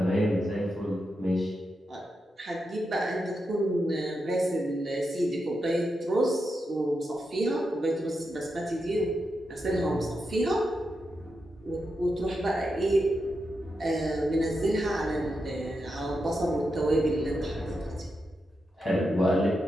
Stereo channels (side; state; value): both; normal; correlation 0.87